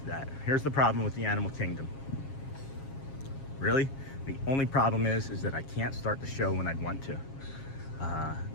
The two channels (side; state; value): right; late; 7.4 ms